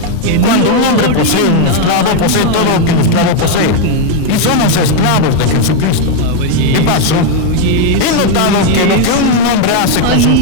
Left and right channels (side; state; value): both; different; correlation 0.01